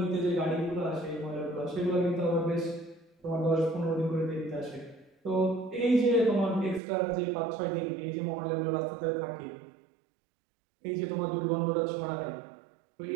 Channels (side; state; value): left; drops out; at 6.8 s